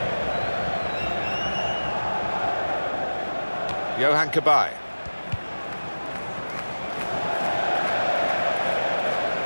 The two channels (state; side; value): inverted; both; correlation -1.00